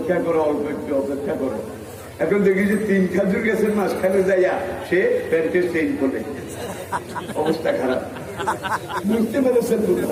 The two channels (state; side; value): identical; both; correlation 1.00